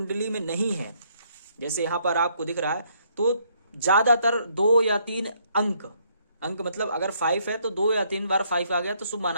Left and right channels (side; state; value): both; inverted; correlation -0.69